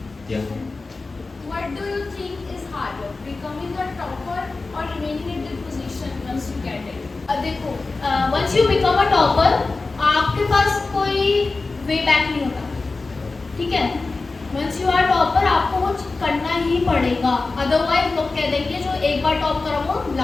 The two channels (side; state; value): right; quieter; 3.7 dB